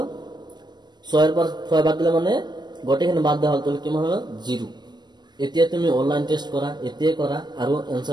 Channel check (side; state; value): left; late; 0.21 ms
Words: 6 পৰা 6 বাদ দিলে মানে গোটেইখিনি বাদ দিয়া হ'ল, তাহলে কিমান হ'ল? 0। এতিয়া তুমি অনলাইন টেষ্ট কৰা, এতিয়াই কৰা আৰু